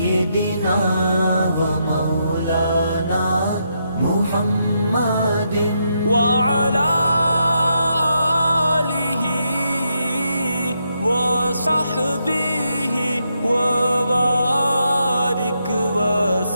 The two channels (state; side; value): inverted; both; correlation -0.80